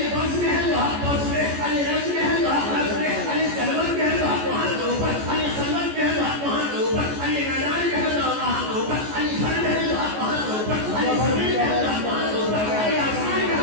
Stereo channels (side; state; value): left; late; 14 ms